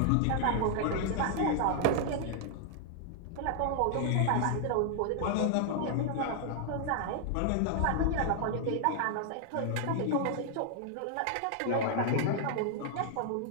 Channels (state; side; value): different; both; correlation 0.00